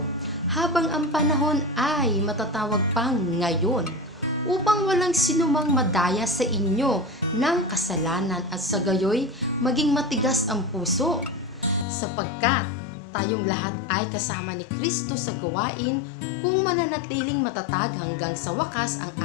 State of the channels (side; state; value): right; drops out; at 11.9 s